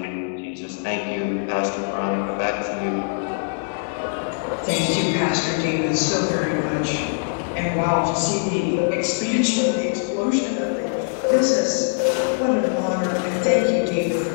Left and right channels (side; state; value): right; silent; digital silence